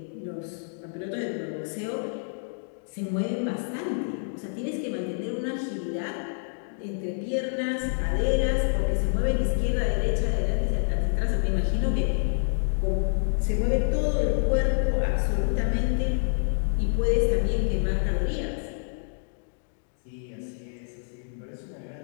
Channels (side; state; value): right; silent; digital silence